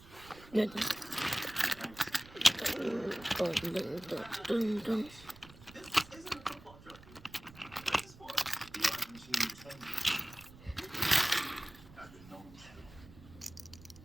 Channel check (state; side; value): noise; right; rumble, 20 dB below the sound